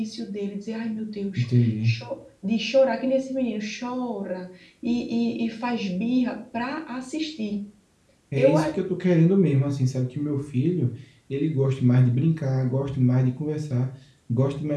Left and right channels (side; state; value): both; identical; correlation 1.00